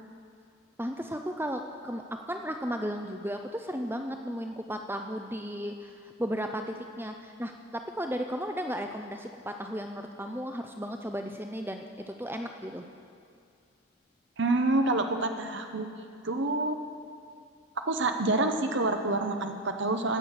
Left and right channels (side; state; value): both; normal; correlation 0.35